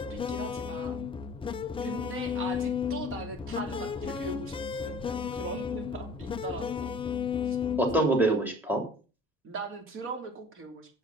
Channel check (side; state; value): both; normal; correlation 0.47